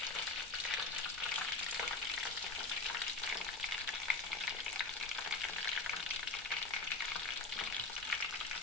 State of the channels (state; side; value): quieter; right; 3.3 dB